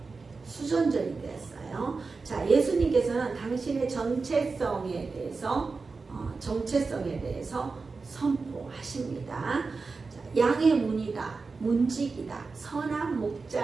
되었어요. 자, 예수님께서는 당신의 정체성에 대해서 선포하십니다. 자, 양의 문이다, 문직이다, 선한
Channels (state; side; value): quieter; left; 4.3 dB